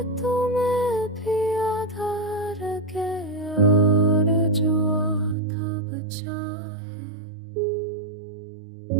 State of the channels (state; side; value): drops out; left; at 5.4 s